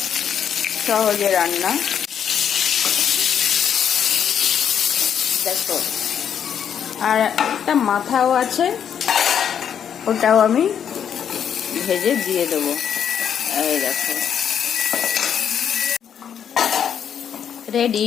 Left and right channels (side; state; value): right; quieter; 8.5 dB